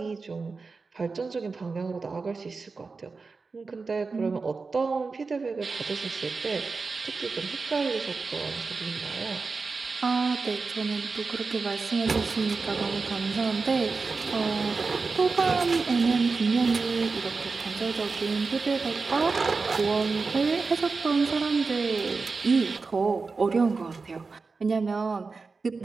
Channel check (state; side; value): quieter; left; 4.3 dB